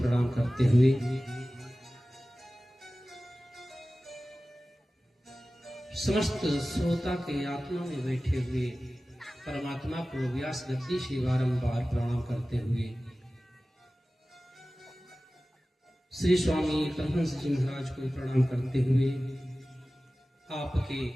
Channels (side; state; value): both; normal; correlation 0.96